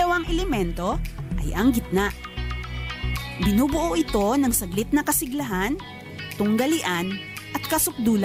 elemento ay ang gitna. Binubuo ito ng saglit na kasiglahan, tunggalian at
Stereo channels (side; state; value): both; identical; correlation 1.00